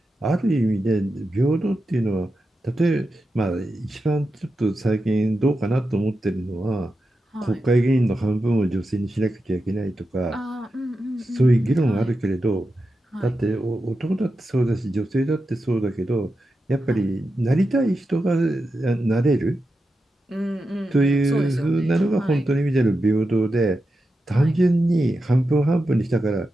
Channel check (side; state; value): both; normal; correlation 0.90